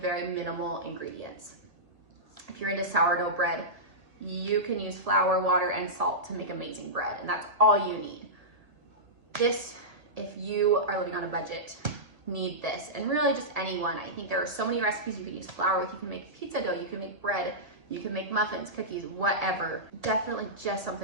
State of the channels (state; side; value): late; left; 1.7 ms